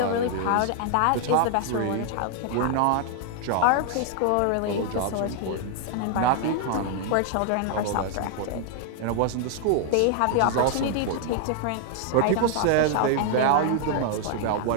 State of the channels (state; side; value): different; both; correlation 0.00